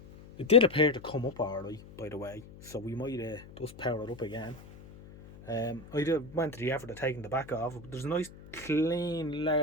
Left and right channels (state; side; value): noise; left; hum, 18 dB below the sound